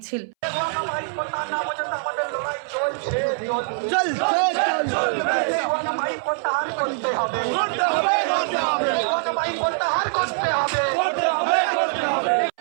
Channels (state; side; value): silent; left; 62 dB below the other